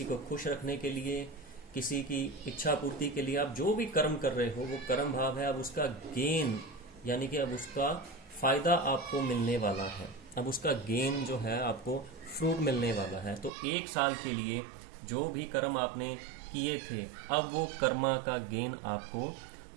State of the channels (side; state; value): left; drops out; at 13.5 s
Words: को खुश रखने के लिए, किसी की इच्छा पूर्ति के लिए, आप जो भी कर्म कर रहे हो वो कर्म भाव है। अब उसका गेन यानी कि अब उसका फायदा आपको मिलने वाला है, अब उसका गेन जो है आपको फ्रूट मिलने वाला है। तो 1 साल के लिए जो भी कर्म आपने किए थे अब वो कर्मा का गेन आपको